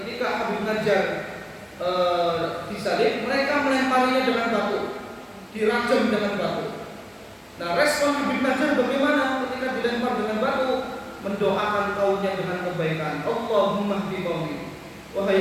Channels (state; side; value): identical; both; correlation 1.00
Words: Habib Najjar disalib, mereka melemparinya dengan batu, dirajam dengan batu. Nah, respon Habib Najjar bagaimana ketika dilempar dengan batu? Mendoakan kaumnya dengan kebaikan. Allahumma hdi qaumi.